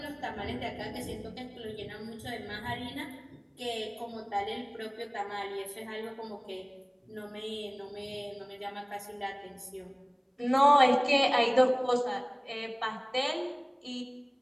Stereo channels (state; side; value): identical; both; correlation 1.00